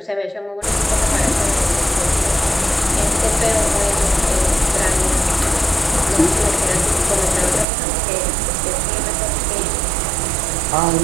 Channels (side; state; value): left; drops out; at 7.7 s